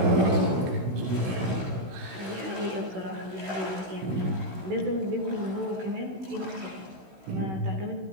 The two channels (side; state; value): left; late; 16 ms